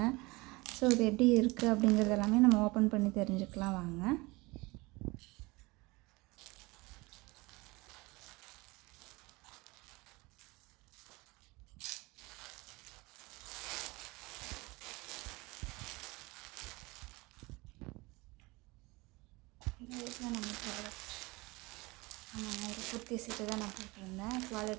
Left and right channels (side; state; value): left; quieter; 23.6 dB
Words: இது எப்படி இருக்குது அப்படிங்கிறது எல்லாமே நம்ம ஓப்பன் பண்ணி தெரிஞ்சுக்கலாம். வாங்க. நம்ம ப்ராடக்ட் ஒரு குர்த்தி செட்டு தான் நான் போட்டிருந்தேன்.